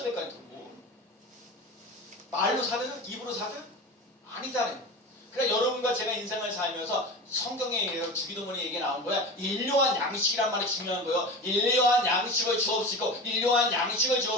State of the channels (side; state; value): both; normal; correlation 0.30